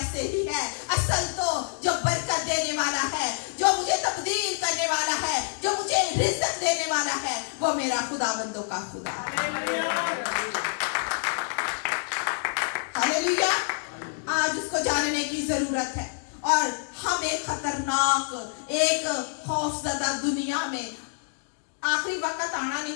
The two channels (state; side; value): silent; right; digital silence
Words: ही है। असल तो जो बरकत देने वाला है, जो मुझे तब्दील करने वाला है, जो मुझे रिज़्क़ देने वाला है, वो मेरा खुदाबंदों का खुदा है। हालेलुया। आज उसको जानने की जरूरत है। और हम एक खतरनाक, एक खौफजदा दुनिया में, आखिरी वक्त आना नहीं